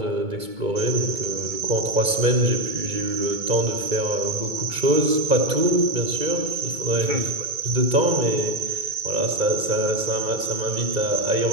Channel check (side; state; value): left; late; 2.2 ms